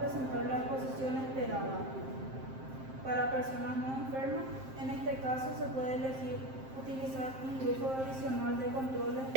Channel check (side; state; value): left; late; 7.6 ms